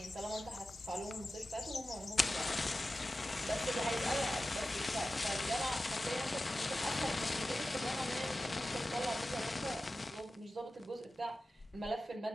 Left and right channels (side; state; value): both; normal; correlation 0.95